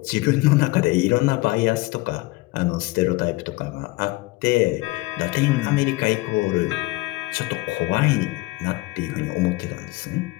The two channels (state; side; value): quieter; right; 21.4 dB